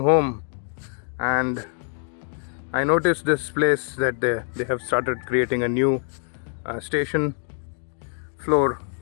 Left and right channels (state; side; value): silent; right; 57 dB below the other